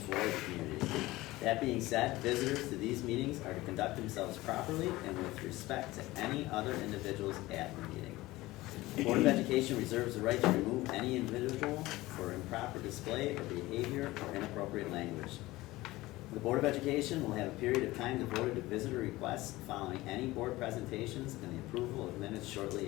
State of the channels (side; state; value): right; quieter; 18.8 dB